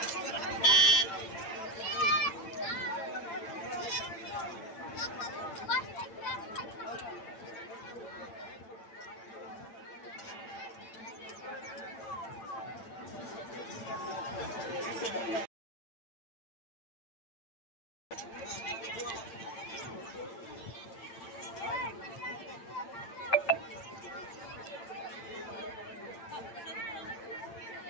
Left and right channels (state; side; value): late; right; 8.8 ms